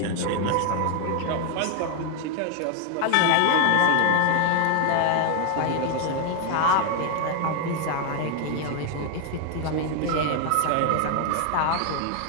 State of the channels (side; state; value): both; different; correlation 0.01